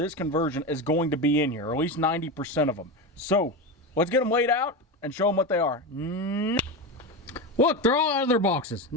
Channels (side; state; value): both; normal; correlation 0.19